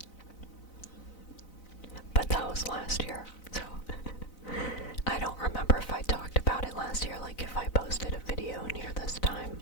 But that was last year, so I don't remember if I talked about it last year, like if I posted a video near this time.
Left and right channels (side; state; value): right; late; 4.0 ms